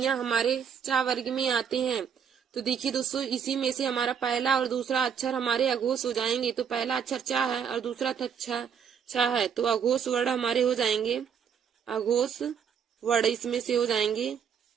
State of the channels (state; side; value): quieter; left; 7.5 dB